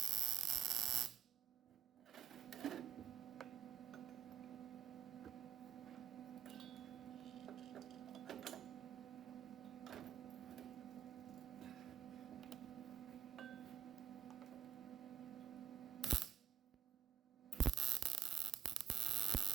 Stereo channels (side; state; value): left; quieter; 9.1 dB